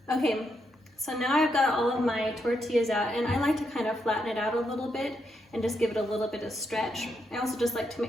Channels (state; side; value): normal; both; correlation 0.80